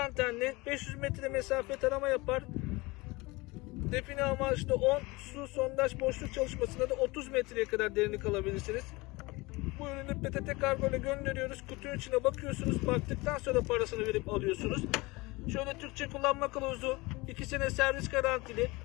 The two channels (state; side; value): quieter; right; 23.3 dB